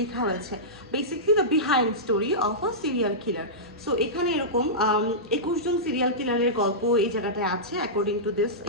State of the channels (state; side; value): normal; both; correlation -0.15